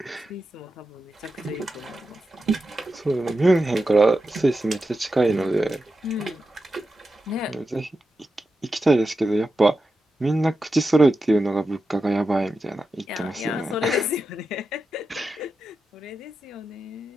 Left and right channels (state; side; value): normal; both; correlation 0.90